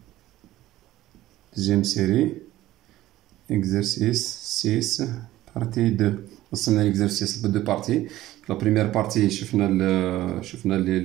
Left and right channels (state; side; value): quieter; left; 15.4 dB